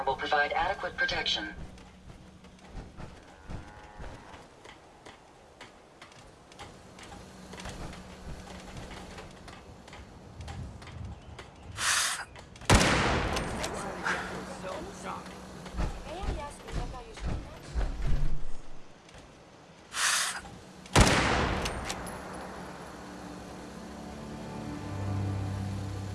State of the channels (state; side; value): identical; both; correlation 1.00